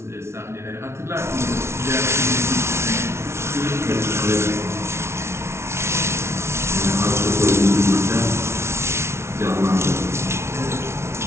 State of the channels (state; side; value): late; left; 0.13 ms